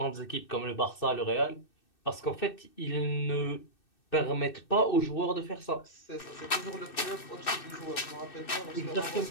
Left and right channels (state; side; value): late; right; 2.6 ms